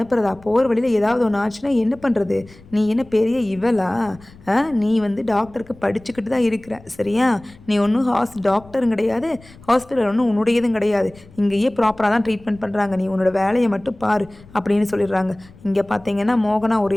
போகிற வழியில் ஏதாவது ஒன்று ஆச்சுன்னா என்ன பண்ணுறது, நீ என்ன பெரிய இவளா? நீ டாக்டருக்கு படிச்சுக்கிட்டு தான் இருக்கிற சரியா? நீ ஒன்றும் டாக்டரும் கிடையாது, ஹாஸ்பிட்டல் ஒன்றும் உன்னுடையதும் கிடையாது, இங்கேயே ப்ராப்பராக தான் ட்ரீட்மெண்ட் பண்ணுறாங்க, நீ உன்னோட வேலையை மட்டும் பாரு அப்படின்னு சொல்லிடுறாங்க. இங்கே பார்த்தீங்கன்னா மோகனா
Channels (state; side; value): noise; left; rumble, 23 dB below the sound